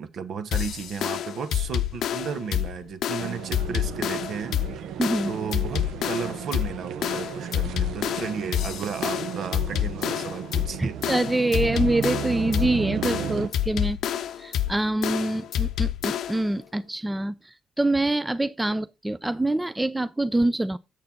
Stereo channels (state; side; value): normal; both; correlation 0.73